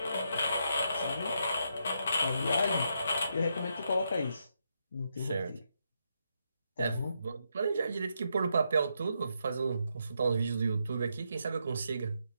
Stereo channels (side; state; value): both; inverted; correlation -0.80